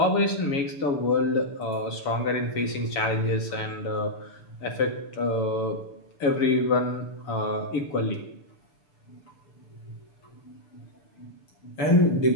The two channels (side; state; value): right; late; 7.1 ms